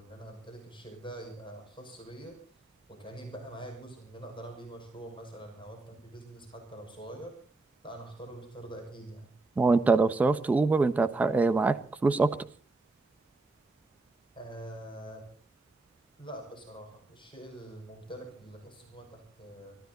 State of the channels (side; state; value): left; quieter; 3.3 dB